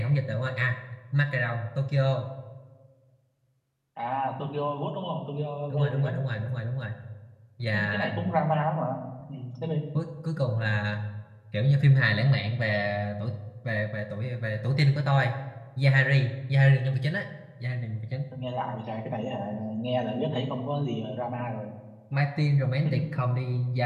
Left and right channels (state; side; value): identical; both; correlation 1.00